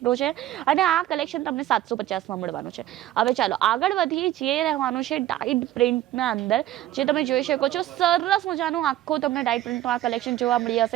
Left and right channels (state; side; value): quieter; left; 13.7 dB